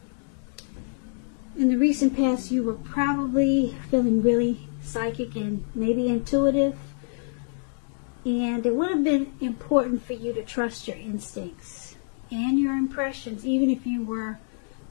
in the recent past, you were probably feeling really psychic and maybe intuitive. And it would have been important for you to trust your instincts and your impressions, even if you were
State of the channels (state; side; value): silent; right; 61 dB below the other